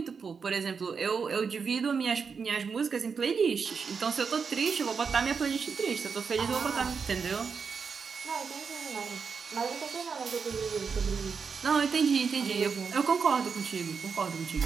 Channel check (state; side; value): quieter; left; 5.7 dB